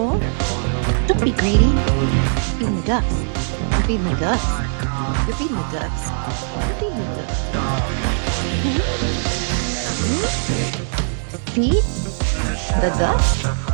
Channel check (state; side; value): silent; left; digital silence